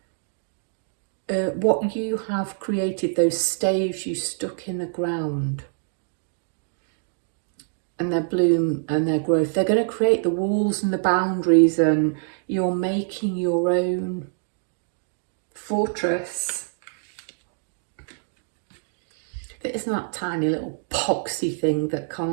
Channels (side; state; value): left; silent; digital silence